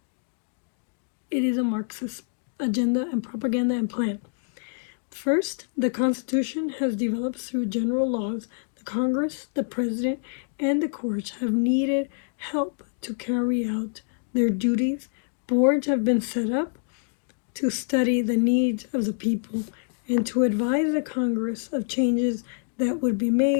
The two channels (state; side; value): silent; right; 61 dB below the other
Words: it is a Marxist agenda and propaganda and plan. First, the Constitution has developed through general laws. The Congress, the President, and the courts have needed help to carry out their duties. Boards have been set up to study the needs of the people and to advise the Congress of changes that would be